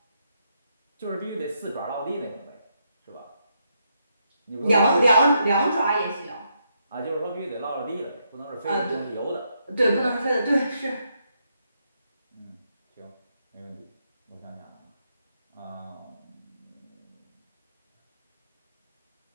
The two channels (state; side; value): inverted; both; correlation -0.78